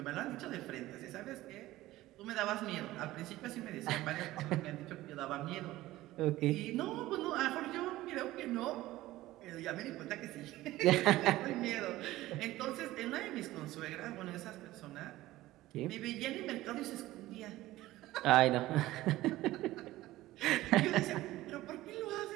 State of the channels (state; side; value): quieter; left; 16.6 dB